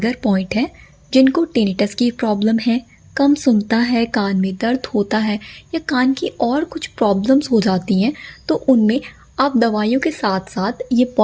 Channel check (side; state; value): both; identical; correlation 1.00